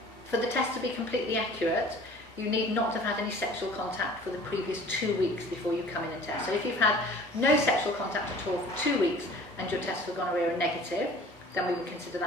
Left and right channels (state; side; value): normal; both; correlation 0.47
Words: for the test to be completely accurate, you need not to have had any sexual contact for the previous 2 weeks before you come in and test. So if you've had no sexual contact at all for 2 weeks and your tests for gonorrhea are negative, then we would consider